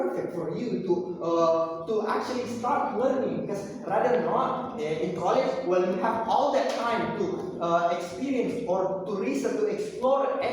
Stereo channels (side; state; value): both; identical; correlation 1.00